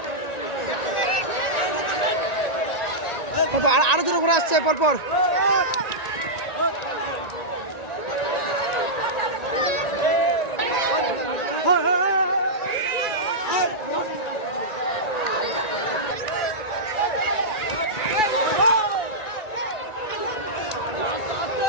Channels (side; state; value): right; late; 1.9 ms